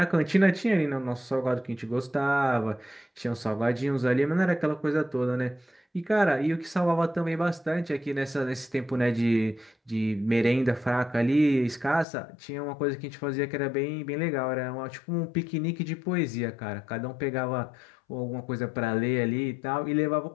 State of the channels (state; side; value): drops out; right; at 12.1 s